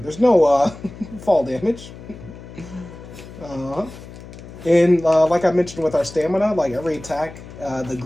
no fall damage. And like I mentioned with our stamina, like every attack, the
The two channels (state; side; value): noise; left; hum, 16 dB below the sound